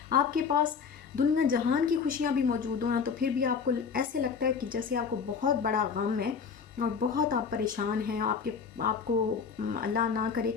آپ کے پاس دنیا جہان کی خوشیاں بھی موجود ہوں تو پھر بھی آپ کو ایسے لگتا ہے کہ جیسے آپ کو بہت بڑا غم ہے اور بہت آپ پریشان ہیں، آپ کو اللہ نہ کرے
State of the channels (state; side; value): quieter; right; 6.0 dB